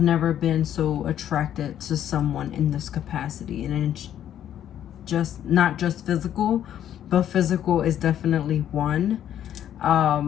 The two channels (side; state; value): right; quieter; 10.6 dB